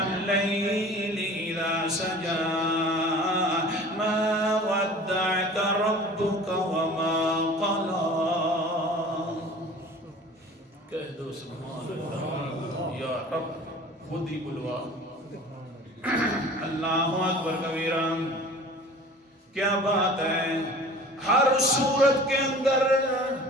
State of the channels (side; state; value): both; normal; correlation 0.43